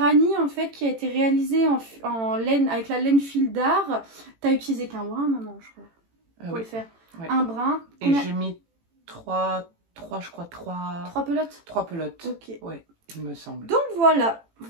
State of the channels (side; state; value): left; late; 18 ms